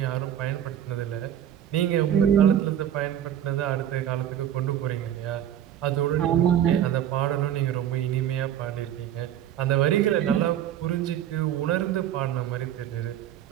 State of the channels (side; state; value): left; quieter; 10.6 dB